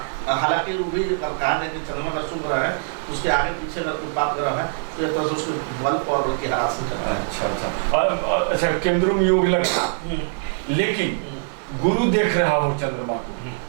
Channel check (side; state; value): left; silent; digital silence